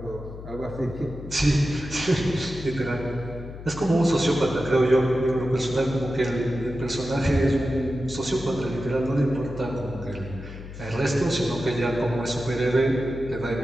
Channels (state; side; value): noise; left; hum, 12 dB below the sound